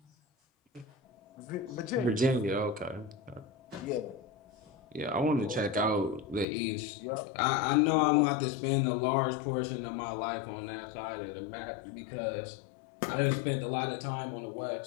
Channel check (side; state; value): right; drops out; at 6.5 s